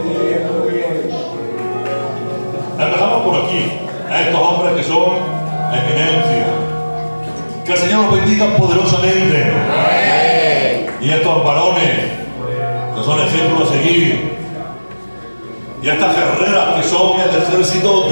Empezamos por aquí, a estos hombres que son eminencia. Que el Señor los bendiga poderosamente. Y a estos varones que son ejemplos a seguir. Y a estas guerreras que son el ejército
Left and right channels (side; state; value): both; inverted; correlation -1.00